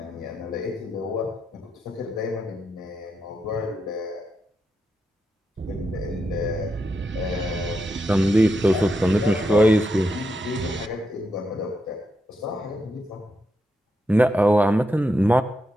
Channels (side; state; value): both; normal; correlation 0.84